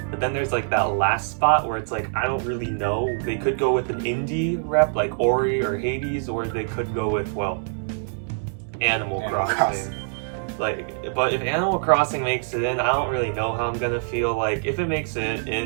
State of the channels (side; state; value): left; silent; digital silence